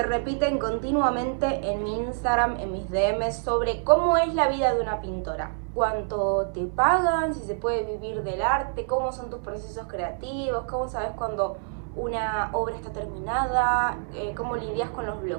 repiten continuamente en mi Instagram, en mis DMs, sobre cómo es la vida de una pintora. ¿Cuánto te pagan? ¿Si se puede vivir del arte? ¿Cómo son tus procesos creativos? ¿Cómo sabes cuando una obra está terminada? ¿Cómo lidias con los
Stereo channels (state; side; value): silent; left; 60 dB below the other